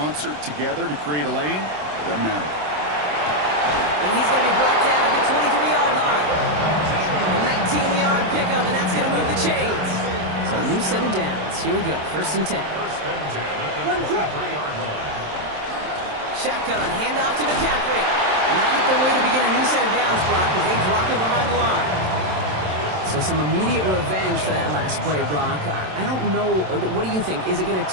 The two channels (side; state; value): left; late; 27 ms